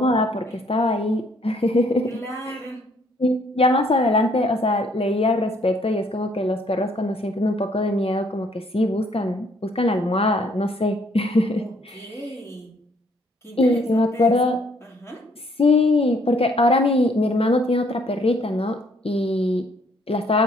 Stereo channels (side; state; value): both; normal; correlation 0.65